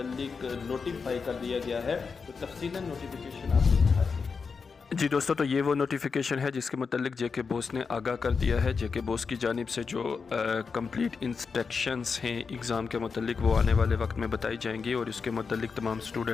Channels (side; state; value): right; quieter; 5.2 dB